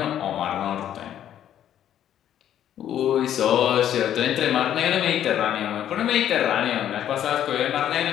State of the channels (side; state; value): right; quieter; 10.7 dB